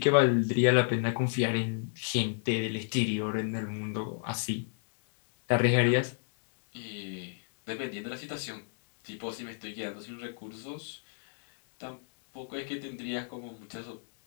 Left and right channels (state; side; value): silent; right; digital silence